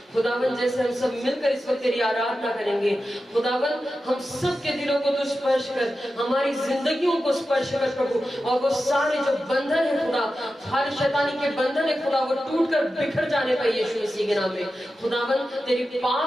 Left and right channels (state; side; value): normal; both; correlation 0.92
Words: खुदावन जैसे हम सब मिलकर इस वक्त तेरी आराधना करेंगे खुदावन, हम सब के दिलों को तू स्पर्श कर, हमारी जिंदगियों को स्पर्श कर प्रभु। और वो सारे जो बंधन है खुदा, हर शैतानी के बंधन है खुदा, वो टूट कर बिखर जाने पाए यीशु मसीह के नाम में। खुदावन तेरी